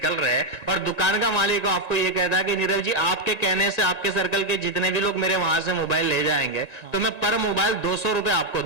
रहे हैं और दुकान का मालिक आपको ये कहता है कि नीरव जी, आपके कहने से आपके सर्कल के जितने भी लोग मेरे वहां से मोबाइल ले जाएंगे तो मैं पर मोबाइल 200 रुपए आपको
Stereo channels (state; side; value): late; right; 1.9 ms